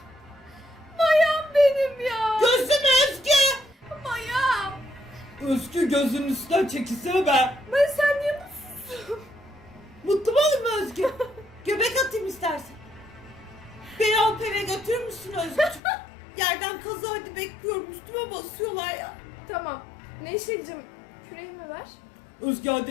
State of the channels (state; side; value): drops out; right; at 15.8 s